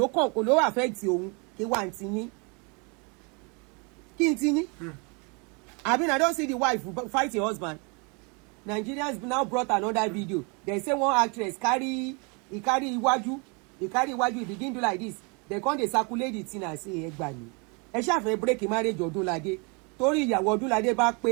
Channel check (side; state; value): left; quieter; 32.3 dB